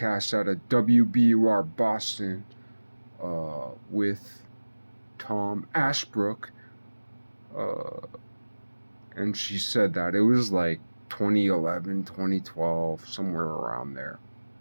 out of WBUR Boston, with Tom Ashbrook, and she said that it was like 2011, 2012, somewhere around there.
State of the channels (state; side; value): inverted; both; correlation -1.00